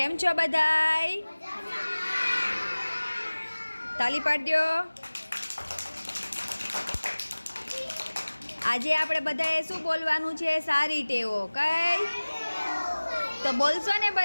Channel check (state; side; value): inverted; both; correlation -1.00